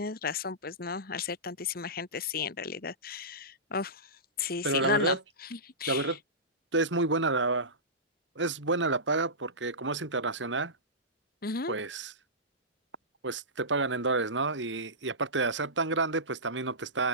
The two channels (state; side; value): normal; both; correlation -0.18